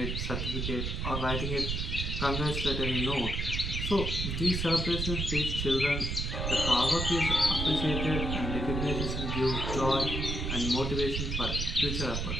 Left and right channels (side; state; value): right; noise; rumble, 2 dB below the sound